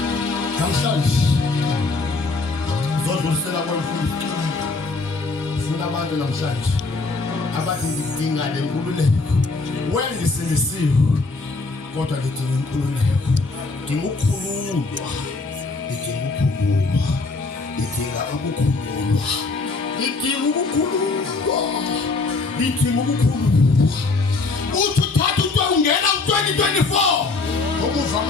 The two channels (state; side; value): quieter; right; 3.7 dB